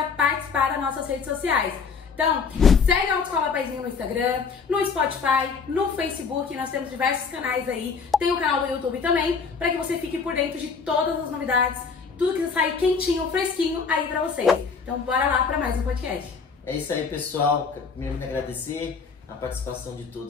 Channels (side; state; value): right; quieter; 5.4 dB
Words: participar das nossas redes sociais. Então, segue a Autoescola Paizinho no Instagram, no Spotify, no Facebook, nós temos diversos canais aí, tem o canal do YouTube também, para que você fique por dentro de todas as novidades, tudo que sair quentinho, fresquinho aí pra vocês. Então, bora lá para mais um podcast. É isso aí, pessoal. Primeiro, me agradecer a participação de